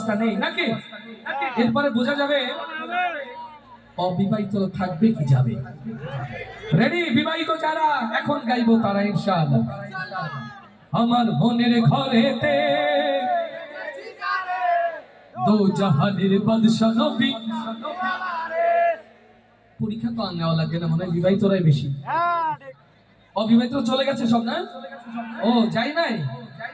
নেই নাকি, এরপরে বোঝা যাবে অবিবাহিত থাকবে কি যাবে। রেডি? বিবাহিত যারা এখন গাইবো তারা ইনশাআল্লাহ। আমার মনের ঘরেতে দো জাহানের বাদশা নবী। পরীক্ষা তো আর নেওয়া লাগে না, মনে হয় বিবাহিতরাই বেশি। অবিবাহিত চলে গেছে সব না? ও যাই নাই?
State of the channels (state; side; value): identical; both; correlation 1.00